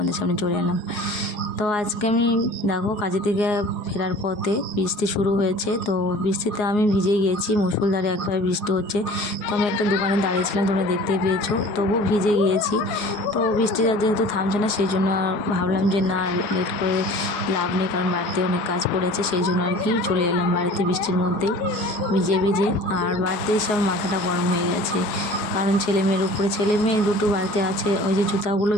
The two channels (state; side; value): late; right; 4.8 ms